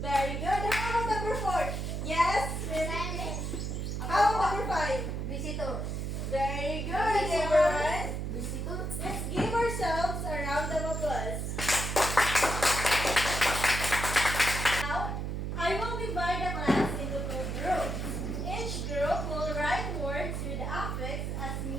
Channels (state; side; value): noise; right; hum, 3 dB below the sound